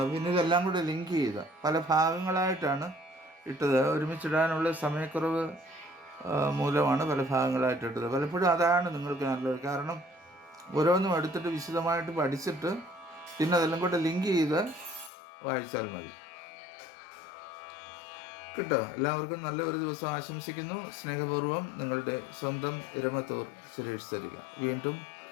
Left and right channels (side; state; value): right; drops out; at 15.1 s